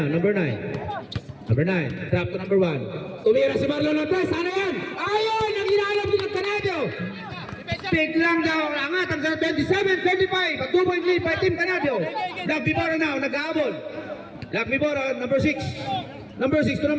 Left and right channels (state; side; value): identical; both; correlation 1.00